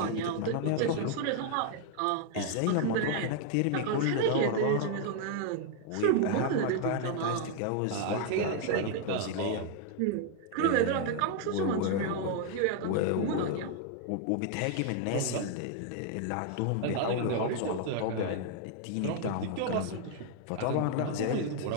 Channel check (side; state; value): both; different; correlation 0.00